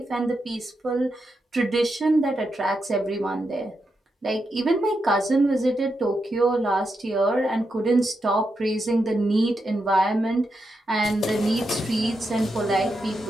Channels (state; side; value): normal; both; correlation 0.85